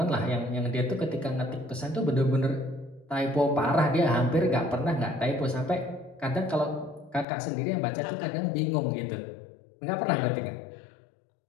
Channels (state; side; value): drops out; right; at 7.2 s